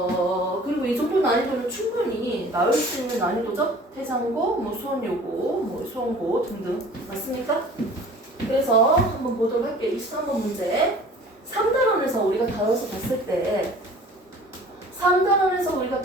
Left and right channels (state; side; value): normal; both; correlation 0.46